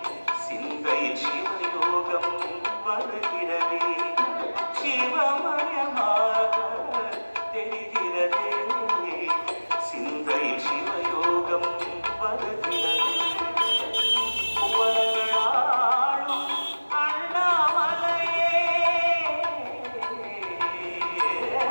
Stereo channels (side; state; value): both; inverted; correlation -1.00